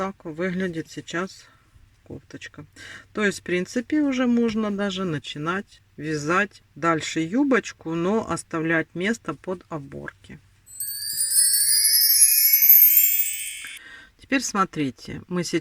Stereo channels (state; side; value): identical; both; correlation 1.00